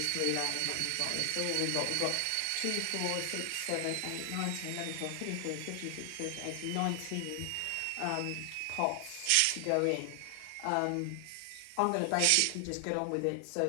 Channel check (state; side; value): different; both; correlation 0.00